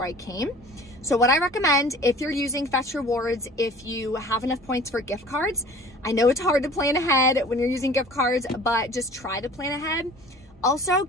I came. So what I recommend, if you're using Fetch Rewards, if you have enough points for gift cards, I know it's hard to plan ahead when you're using gift cards, but just try to plan ahead. Also,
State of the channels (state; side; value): normal; both; correlation 0.46